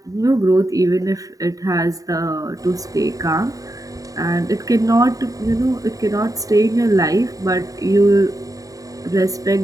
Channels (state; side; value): late; left; 0.17 ms